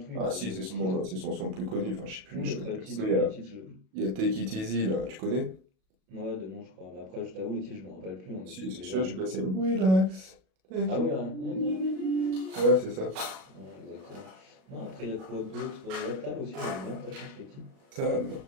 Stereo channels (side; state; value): left; late; 37 ms